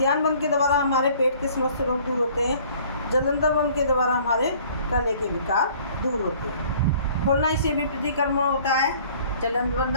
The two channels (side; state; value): both; inverted; correlation -0.54